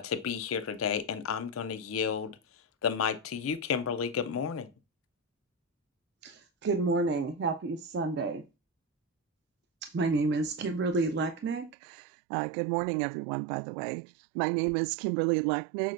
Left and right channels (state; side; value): drops out; left; at 11.8 s